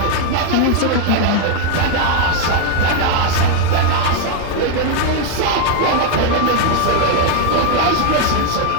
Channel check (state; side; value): different; both; correlation 0.00